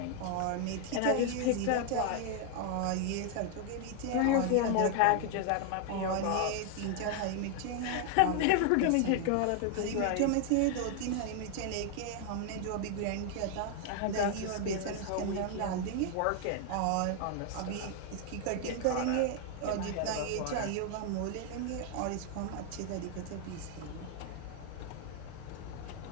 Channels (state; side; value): different; both; correlation 0.00